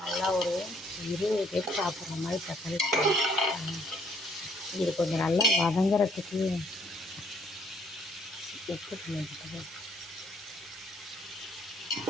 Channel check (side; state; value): both; normal; correlation 0.64